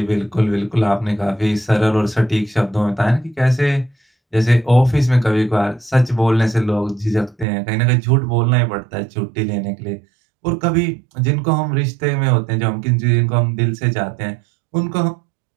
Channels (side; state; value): left; drops out; at 7.5 s